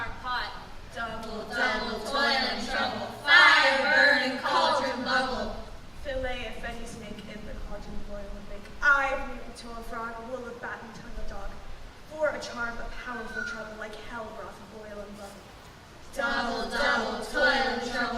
pot. Double, double, toil and trouble. Fire burn and cauldron bubble. Fillet if any snake in the cauldron boil and bake. I breathe to a frog, will a bat and tongue a dog. For a charm, a powerful trouble, like hell broth boil and bubble. Double, double, toil and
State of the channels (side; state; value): both; identical; correlation 1.00